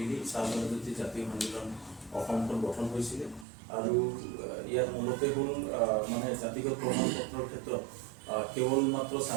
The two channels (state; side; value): drops out; left; at 3.5 s